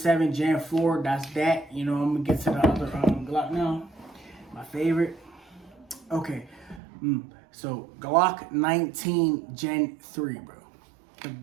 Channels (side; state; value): left; drops out; at 6.8 s